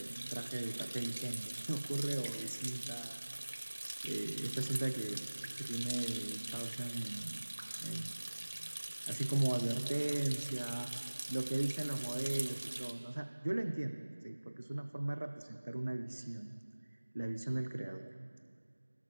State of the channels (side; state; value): both; inverted; correlation -1.00